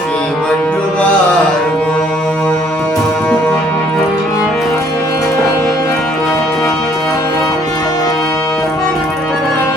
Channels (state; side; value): normal; both; correlation 0.62